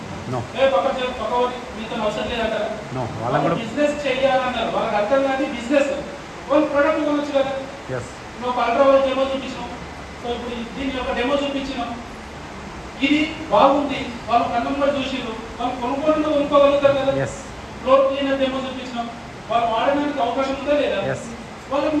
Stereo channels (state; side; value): identical; both; correlation 1.00